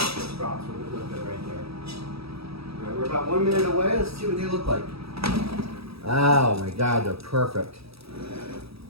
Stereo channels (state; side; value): late; left; 0.77 ms